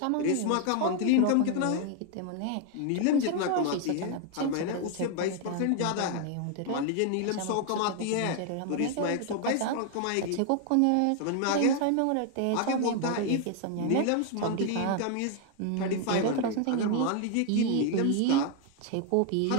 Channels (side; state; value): both; different; correlation 0.00